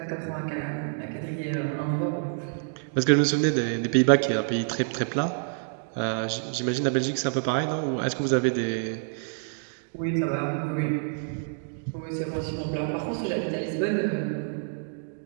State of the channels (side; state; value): left; silent; digital silence